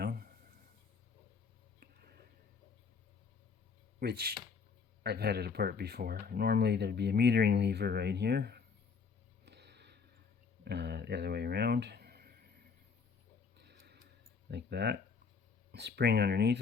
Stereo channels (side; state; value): right; quieter; 5.6 dB